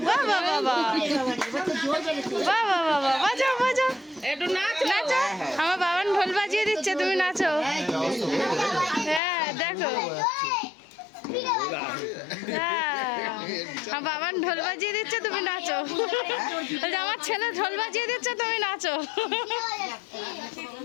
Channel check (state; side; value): drops out; right; at 9.2 s